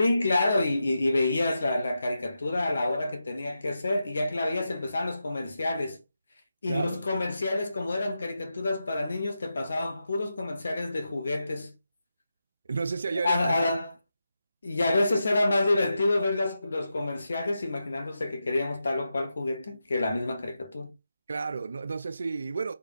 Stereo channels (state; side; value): inverted; both; correlation -0.89